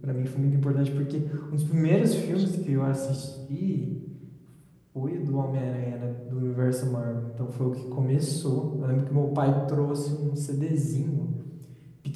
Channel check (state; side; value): identical; both; correlation 1.00